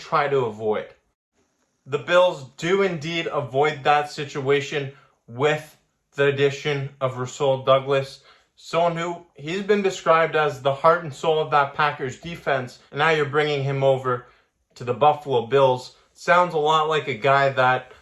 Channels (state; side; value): identical; both; correlation 1.00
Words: try to avoid. The Bills do indeed avoid that situation with the addition of Rasul Douglas, someone who he's been described as the heart and soul of that Packers defense, and now you're bringing him over to the Buffalo Bills. Sounds a lot like a guy that